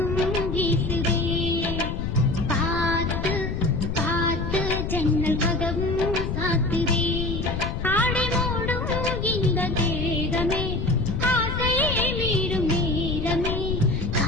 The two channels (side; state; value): left; noise; rumble, 2 dB below the sound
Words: வீசுதே. பார்த்து பார்த்து ஜன்னல் கதவும் சாத்துதே. ஆடை மூடும் இந்த தேகமே ஆசை மீறும் நேரமே.